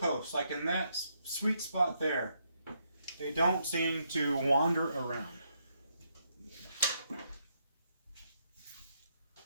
like in that sweet spot there, they don't seem to wander around. Of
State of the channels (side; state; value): both; inverted; correlation -0.76